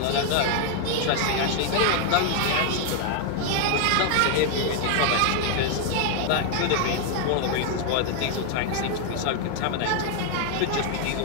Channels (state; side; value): different; both; correlation 0.00